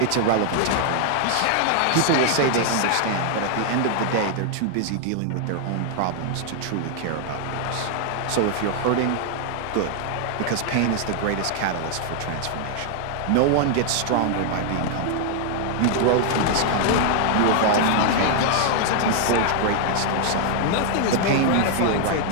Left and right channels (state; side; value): different; both; correlation 0.00